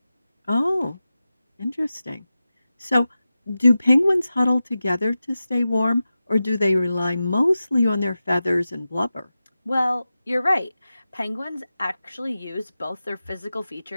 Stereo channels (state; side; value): inverted; both; correlation -0.94